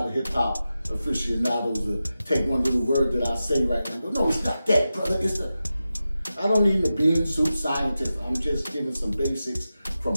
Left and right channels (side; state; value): both; inverted; correlation -0.92